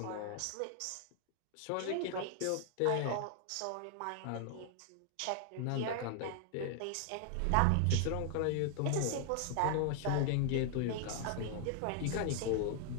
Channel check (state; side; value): different; both; correlation 0.00